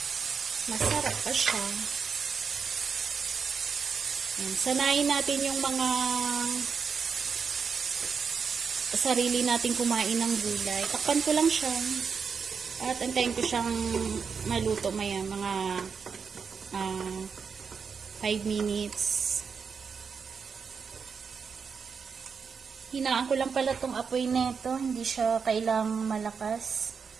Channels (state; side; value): quieter; left; 5.9 dB